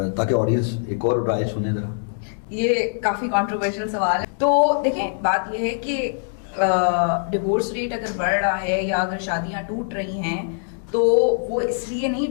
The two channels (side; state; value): right; silent; digital silence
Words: تاکہ آڈینس ایک اور رائے سنیں ذرا. یہ کافی کنٹروورشل سوال ہے. تو دیکھیں بات یہ ہے کہ ڈیورس ریٹ اگر بڑھ رہا ہے یا اگر شادیاں ٹوٹ رہی ہیں تو وہ اس لیے نہیں